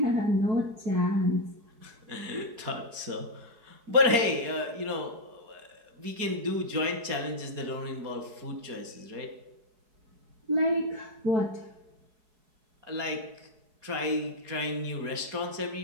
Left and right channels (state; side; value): late; left; 4.7 ms